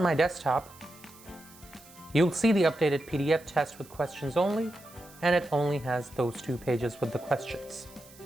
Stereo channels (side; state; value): right; noise; hiss, 22 dB below the sound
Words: my desktop, you'll see the updated PDF test with questions only, and it only has those two pages with the questions.